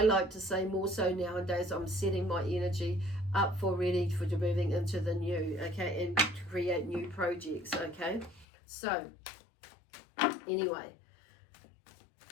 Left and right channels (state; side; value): drops out; right; at 8.5 s